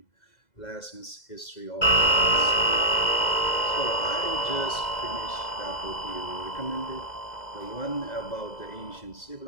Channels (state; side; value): late; right; 2.0 ms